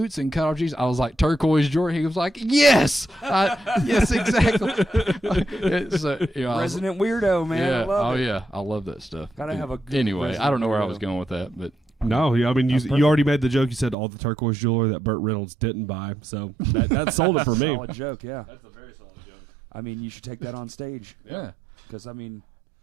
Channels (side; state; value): left; drops out; at 14.0 s